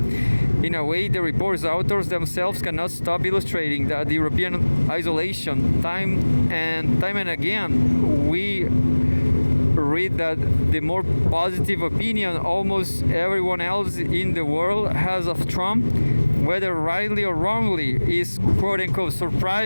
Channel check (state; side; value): inverted; both; correlation -1.00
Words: In a way, the report's authors themselves cannot stop illustrating that the European isolation. Time and again, we read that the more positive opinion almost everyone else in the world has of Trump, whether rightly or wrongly, is quote-unquote